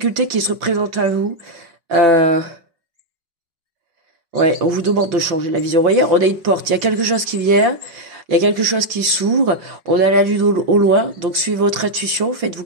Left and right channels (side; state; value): left; late; 5.4 ms